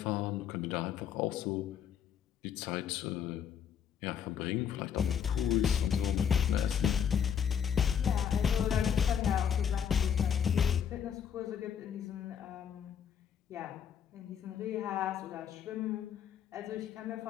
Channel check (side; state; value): right; quieter; 8.2 dB